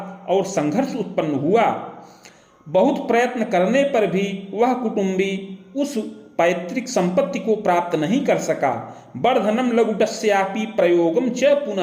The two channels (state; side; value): identical; both; correlation 1.00